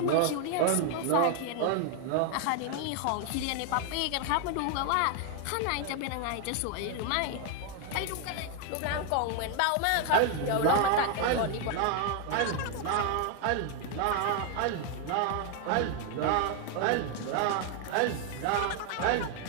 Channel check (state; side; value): different; both; correlation 0.01